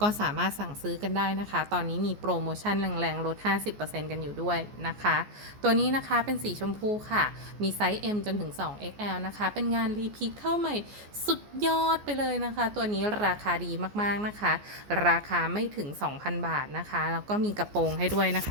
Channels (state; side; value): late; left; 14 ms